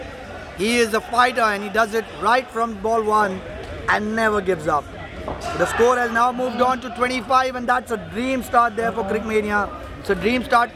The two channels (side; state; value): both; identical; correlation 1.00